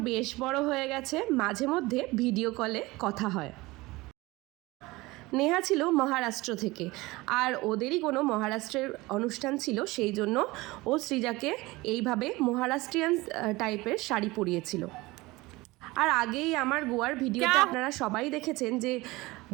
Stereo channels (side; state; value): left; quieter; 21.2 dB